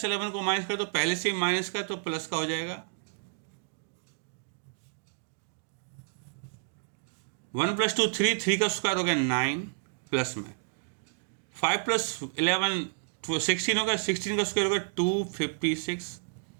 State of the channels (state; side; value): silent; left; digital silence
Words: को माइनस कर दो, पहले से ही माइनस का है तो प्लस का हो जाएगा। 1 + 2 3, 3 का स्क्वायर हो गया 9 प्लस में 5 + 11 16 होगा, 16 का स्क्वायर होगा 256